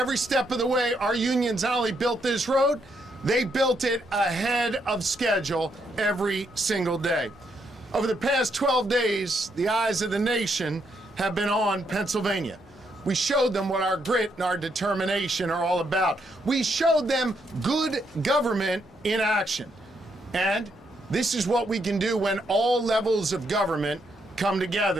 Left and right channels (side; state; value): both; normal; correlation 0.77